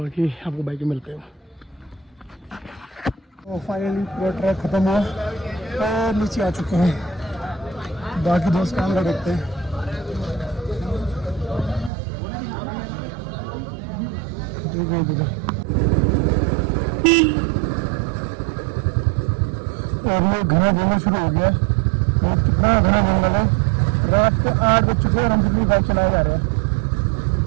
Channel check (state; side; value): drops out; left; at 11.9 s